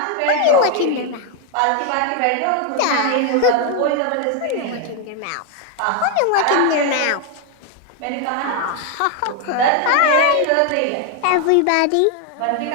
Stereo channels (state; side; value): different; both; correlation 0.01